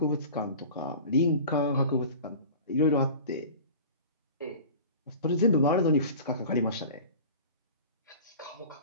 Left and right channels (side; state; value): both; inverted; correlation -0.39